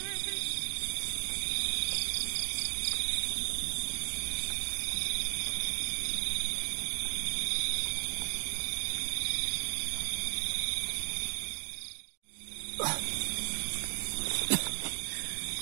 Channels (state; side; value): silent; left; 54 dB below the other